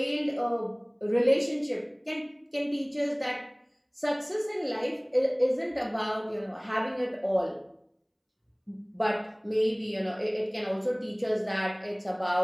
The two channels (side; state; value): both; identical; correlation 1.00